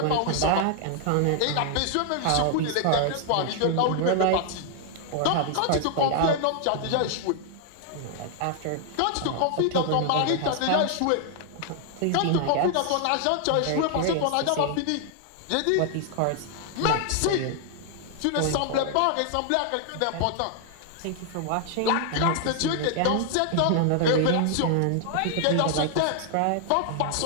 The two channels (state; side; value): different; both; correlation 0.00